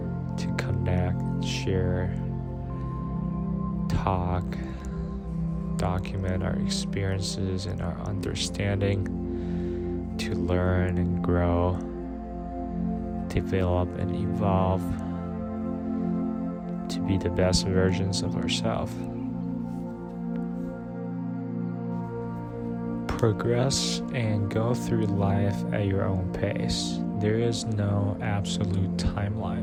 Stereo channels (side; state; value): both; identical; correlation 1.00